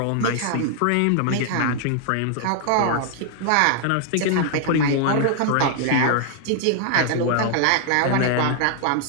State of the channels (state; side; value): different; both; correlation 0.00